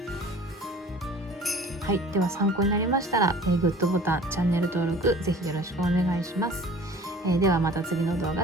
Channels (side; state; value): both; normal; correlation 0.47